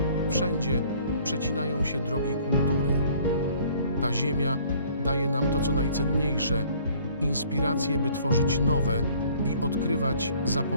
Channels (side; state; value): both; inverted; correlation -0.56